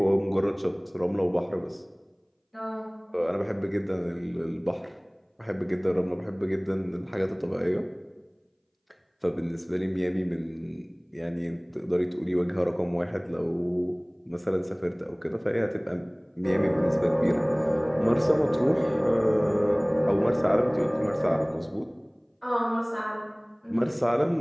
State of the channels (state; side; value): identical; both; correlation 1.00